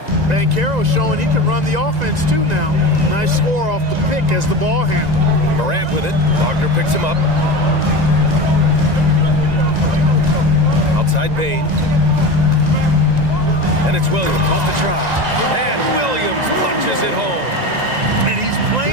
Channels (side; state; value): left; late; 1.9 ms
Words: Banchero showing he can run the offense too now. Nice score off the pick as the ball handler. Morant with it. Wagner picks him up. Outside Bain. And it's Williams off the try. And Williams punches it home. And he's